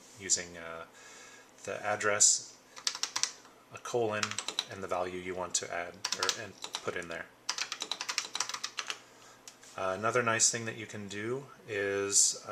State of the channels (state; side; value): identical; both; correlation 1.00